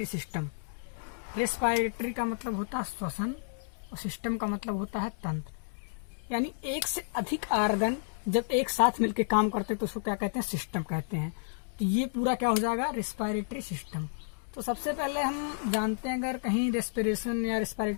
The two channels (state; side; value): silent; right; digital silence